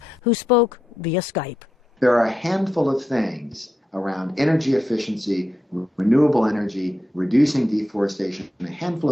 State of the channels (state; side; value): normal; both; correlation 0.86